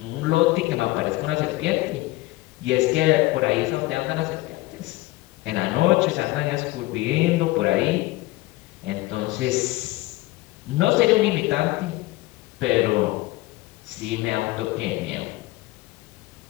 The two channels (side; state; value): right; quieter; 19.4 dB